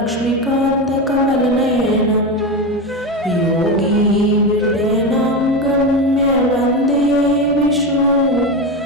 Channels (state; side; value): normal; both; correlation 0.18